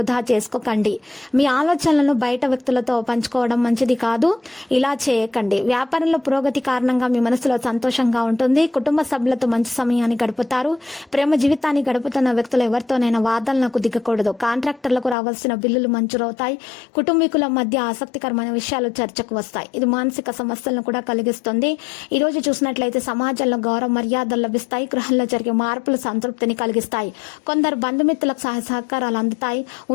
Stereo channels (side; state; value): right; drops out; at 15.2 s